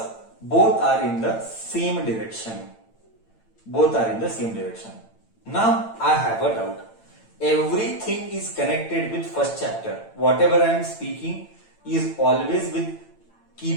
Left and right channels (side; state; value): right; late; 8.9 ms